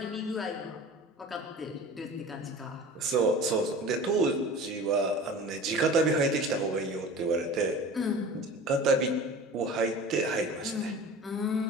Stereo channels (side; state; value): both; normal; correlation 0.38